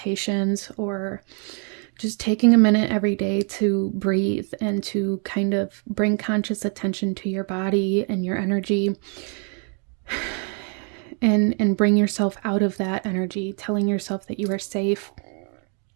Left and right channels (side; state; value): left; quieter; 39.8 dB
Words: or just taking a minute every day to breathe and to kind of bring conscious attention to your body and your energy, and bring yourself out of that energy, telling yourself that you are safe,